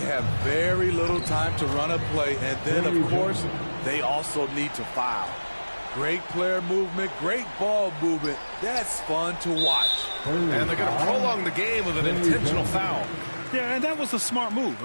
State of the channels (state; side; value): inverted; both; correlation -1.00